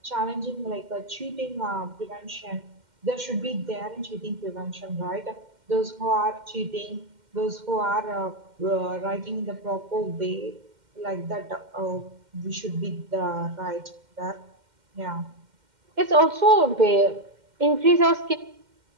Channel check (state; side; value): late; left; 2.1 ms